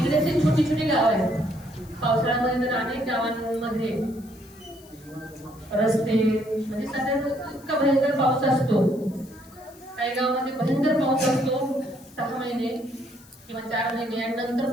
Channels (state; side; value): noise; left; hiss, 25 dB below the sound